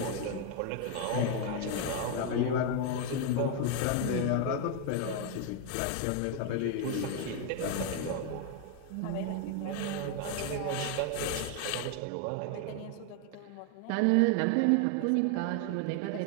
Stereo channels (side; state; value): both; different; correlation 0.01